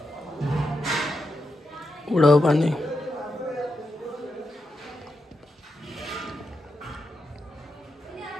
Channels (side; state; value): both; normal; correlation 0.86